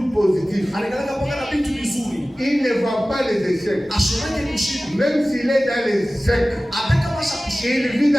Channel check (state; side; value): normal; both; correlation 0.97